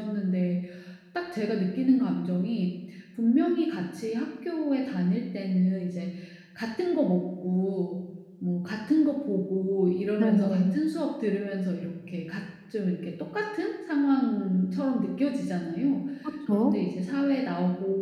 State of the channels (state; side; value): identical; both; correlation 1.00